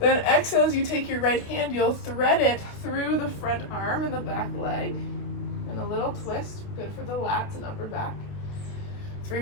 exhale as you take your right hand, you'll thread it through the front arm and the back leg. And a little twist, good for the lats and upper back. 3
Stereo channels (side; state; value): right; late; 28 ms